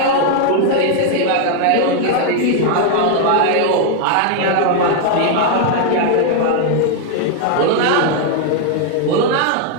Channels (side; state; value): both; different; correlation 0.00